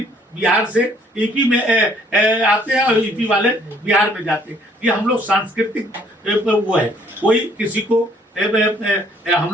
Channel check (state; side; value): normal; both; correlation 0.62